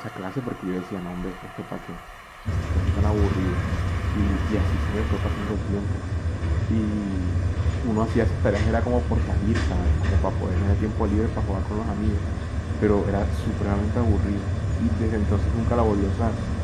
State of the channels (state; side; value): identical; both; correlation 1.00